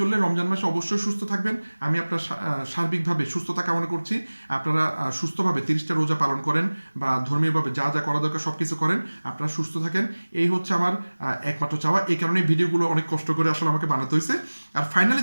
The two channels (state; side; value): inverted; both; correlation -1.00